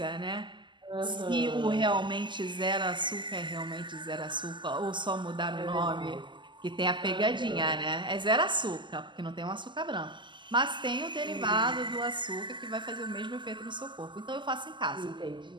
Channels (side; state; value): left; late; 0.23 ms